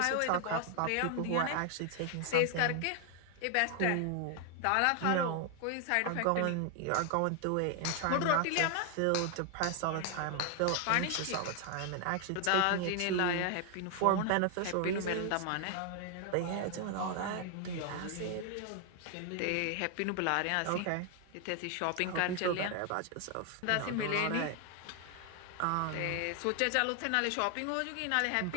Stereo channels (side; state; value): both; different; correlation 0.00